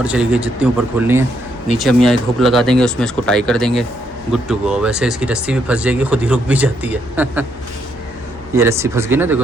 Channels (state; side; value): normal; both; correlation 0.75